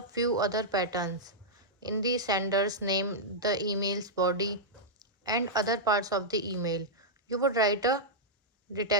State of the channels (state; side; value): normal; both; correlation -0.08